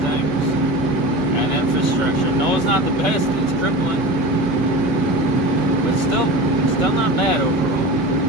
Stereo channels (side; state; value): both; normal; correlation 0.31